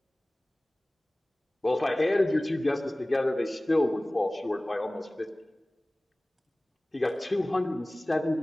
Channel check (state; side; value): normal; both; correlation 0.98